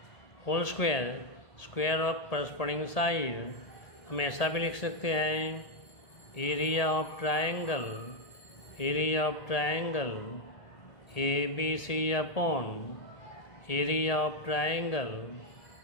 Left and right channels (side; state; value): right; late; 1.8 ms